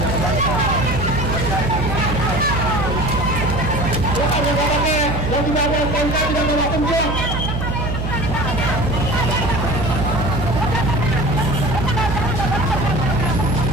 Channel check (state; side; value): noise; right; hum, 2 dB below the sound